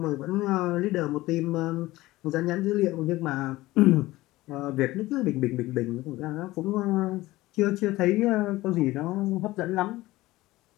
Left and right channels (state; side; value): quieter; right; 18.2 dB